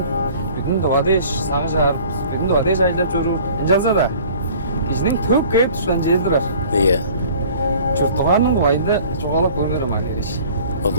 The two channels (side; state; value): both; inverted; correlation -0.49